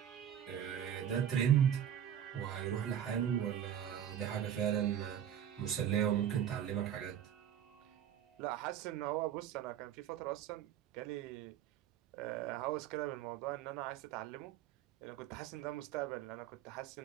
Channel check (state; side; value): quieter; left; 9.9 dB